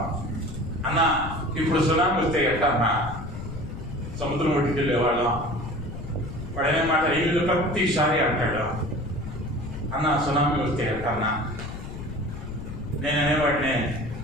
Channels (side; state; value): left; noise; rumble, 9 dB below the sound